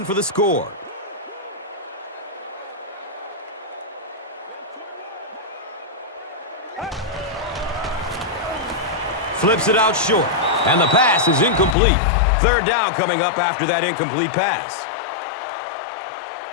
for the score. Flips it out short, and the pass is incomplete. Third down coming up after that incomplete pass.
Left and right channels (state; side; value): drops out; right; at 11.8 s